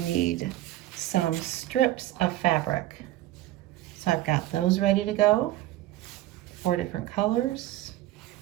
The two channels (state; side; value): quieter; left; 15.2 dB